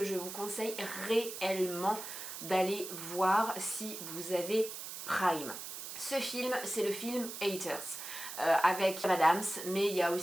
je vous conseille réellement d'aller voir si vous avez Prime. Ce film, c'est le film Haters, avec Amy Adams, mais il y a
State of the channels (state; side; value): noise; right; hiss, 9 dB below the sound